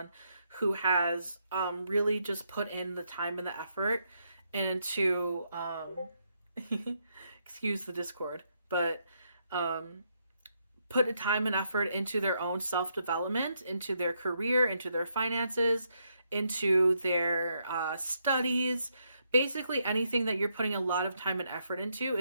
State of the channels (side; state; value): both; inverted; correlation -0.77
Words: who has really just put in the time and the effort into excuse the discord, but put a time and effort into their own self-development, into their career, into their finances, into their studies. Basically anything that you're putting a lot of time and effort into